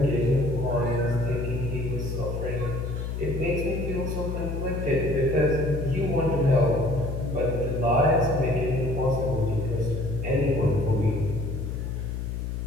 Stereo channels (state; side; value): noise; left; hum, 4 dB below the sound